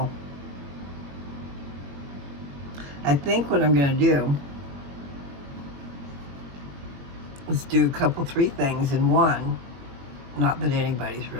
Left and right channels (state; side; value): late; left; 21 ms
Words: I think what I'm going to do is do a couple, three things in one. Not that anybody's